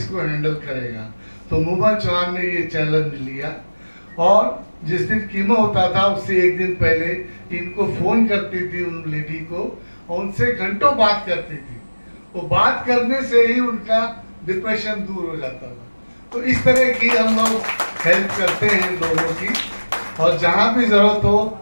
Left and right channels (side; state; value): both; inverted; correlation -1.00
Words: हैंडल करेगा। तो मोहम्मद चौहान ने ये चैलेंज लिया, और जिस दिन कीमो होता था उससे एक दिन पहले इनको फोन करती थी उन लेडी को, और उनसे घंटों बात करती थी। वो बात करने से ही उनका डिप्रेशन दूर हो जाता था। तो इस तरह की हम लोग हेल्प करते हैं लोगों की, और जहाँ भी जरूरत हो